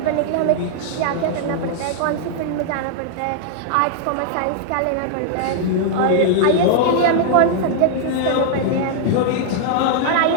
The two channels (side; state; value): both; different; correlation -0.01